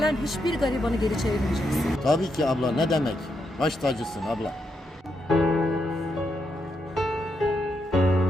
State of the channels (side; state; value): both; normal; correlation 0.82